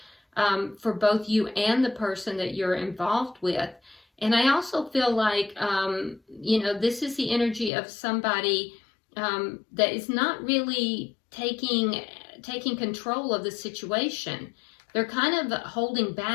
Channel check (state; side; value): drops out; right; at 7.7 s